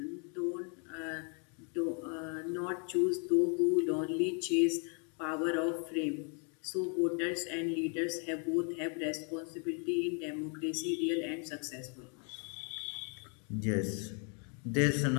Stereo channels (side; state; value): right; quieter; 39.3 dB